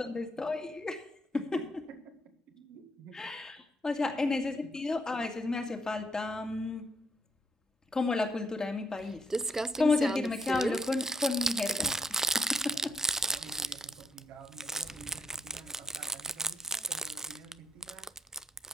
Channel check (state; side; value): normal; both; correlation 0.74